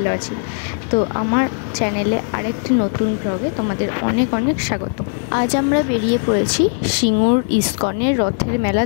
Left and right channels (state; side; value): silent; right; 66 dB below the other